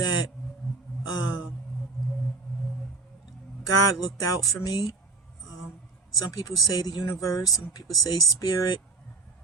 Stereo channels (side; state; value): left; quieter; 3.9 dB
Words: God looked out for me. Some people say the universe, some people say spirit.